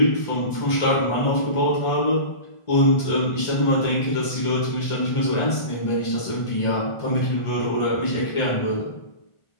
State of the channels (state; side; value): late; right; 1.4 ms